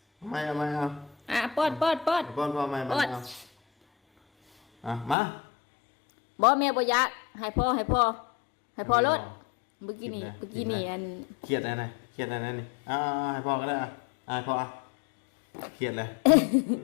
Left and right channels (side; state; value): right; drops out; at 5.2 s